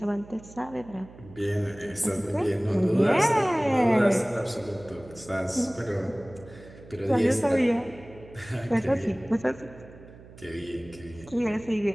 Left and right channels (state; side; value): noise; right; hum, 20 dB below the sound